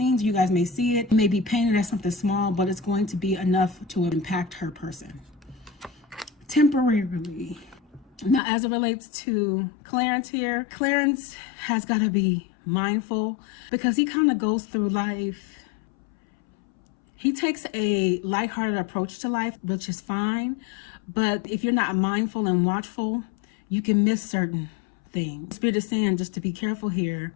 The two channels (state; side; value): drops out; right; at 8.4 s